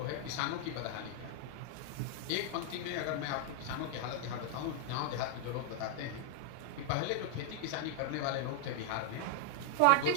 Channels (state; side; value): different; both; correlation 0.00